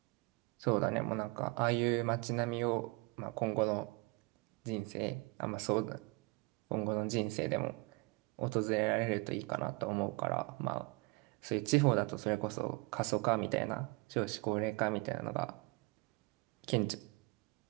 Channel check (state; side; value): quieter; left; 26.3 dB